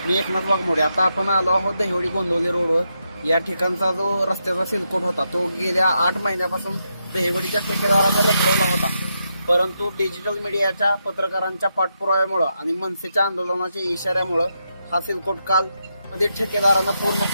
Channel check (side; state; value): both; inverted; correlation -0.83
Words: मी एकनाथ वाघमोडे. आता आपण आलो आहोत दहिवडी गोंदवले रोडवर. या ठिकाणचा जो रस्त्याचा सिलकोट होता तो गेल्या 8 महिन्यापासून दहिवडीच्या ठेकेदारानं रखडवला होता. परंतु डिजिटल मीडियाच्या पत्रकारांच्या पाठपुराव्यामुळे आणि मनसेच्या आंदोलनाच्या इशाऱ्यामुळे हा सिलकोट काल मध्ये ठेकेदारानं पूर्ण